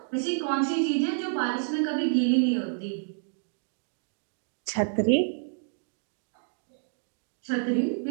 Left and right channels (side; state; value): left; silent; digital silence